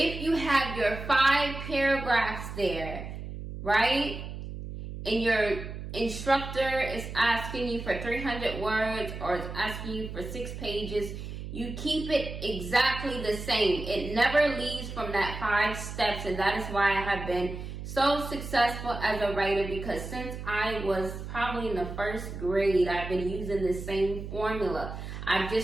you have your 5 paragraphs there, right? And your instructor is asking you for 300 words or is asking you for 6 pages, you keep it exactly the same. It never leaves from that 5 steps, and that is why I have been so successful as a writer, because since I was probably in the first grade, I've been using the same formula. I've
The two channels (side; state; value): right; noise; hum, 8 dB below the sound